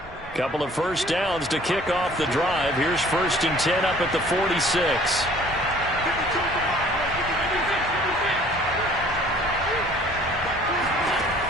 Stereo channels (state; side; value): normal; both; correlation 0.54